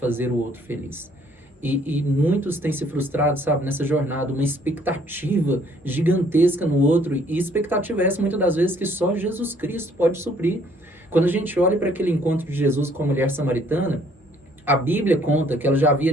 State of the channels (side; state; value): both; normal; correlation 0.62